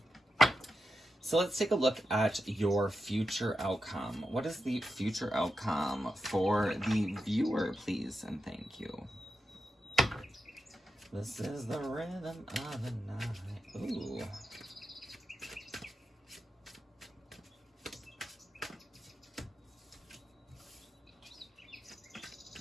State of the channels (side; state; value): both; normal; correlation 0.88